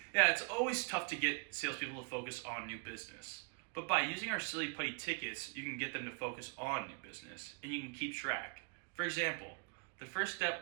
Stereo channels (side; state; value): left; quieter; 37.5 dB